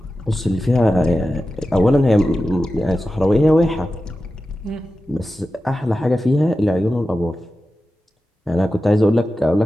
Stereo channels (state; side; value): normal; both; correlation 0.93